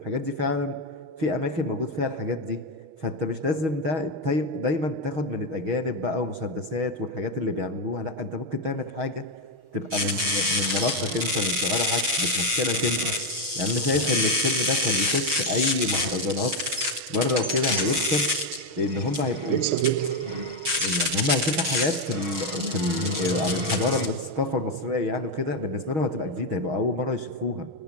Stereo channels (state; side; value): late; left; 6.3 ms